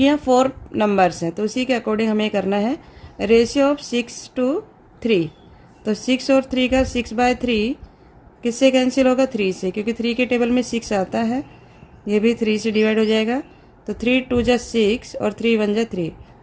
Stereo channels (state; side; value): identical; both; correlation 1.00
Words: यहाँ 4 नंबर्स हैं, तो उसी के अकॉर्डिंग हमें करना है। रेशियो ऑफ 6 to 3, तो 6 और 3 का 6/3 किससे कैंसिल होगा, 3 से, क्योंकि 3 के टेबल में 6 आता है। ये भी 3 से डिवाइड हो जाएगा। तो 3 2 जा 6 और 3 1 जा 3,